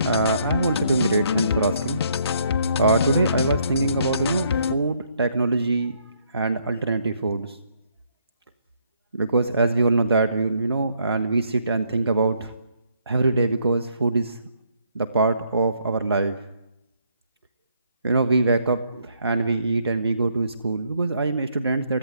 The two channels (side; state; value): both; inverted; correlation -0.70